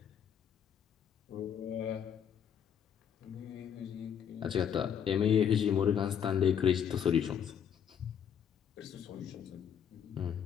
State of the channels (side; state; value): right; quieter; 8.4 dB